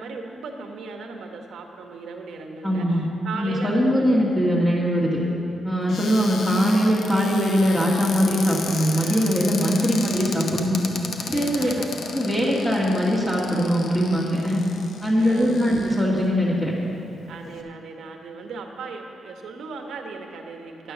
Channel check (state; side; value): normal; both; correlation 0.85